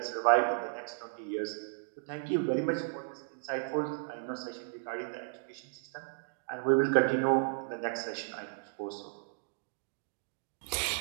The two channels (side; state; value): left; silent; digital silence